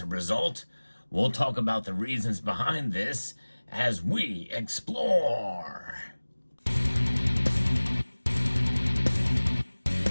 result. We'll talk about the reasons behind this as we explore.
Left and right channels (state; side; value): inverted; both; correlation -1.00